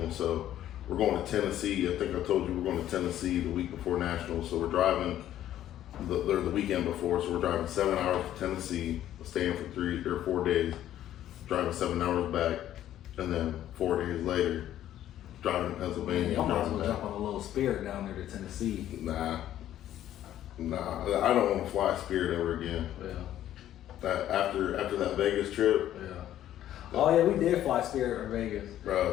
So we're going to Tennessee. I think I told you we're going to Tennessee the week before nationals. So we're driving the weekend before. So we're driving 7 hours to Tennessee, staying for 3 or 4 days, driving 7 hours back, and then 4 days later, driving to Pennsylvania. Y'all might as driving well back. jump on a little Spirit down there to Tennessee. Nah, I don't want to fly Spirit ever again. Yeah. That after that Vegas trip, Yeah. Oh yeah, we did fly Spirit in Vegas.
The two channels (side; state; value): right; quieter; 12.1 dB